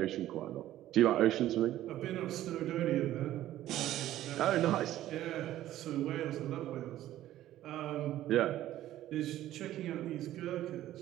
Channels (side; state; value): left; quieter; 13.6 dB